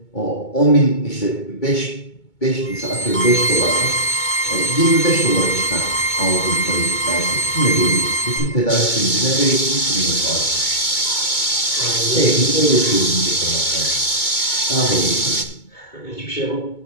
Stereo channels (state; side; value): late; right; 2.2 ms